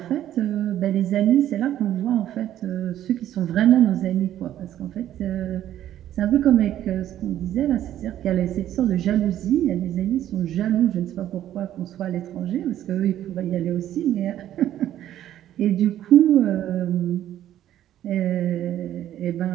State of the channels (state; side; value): quieter; left; 12.0 dB